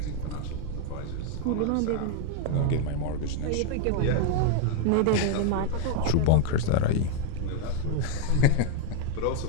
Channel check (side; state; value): both; different; correlation 0.00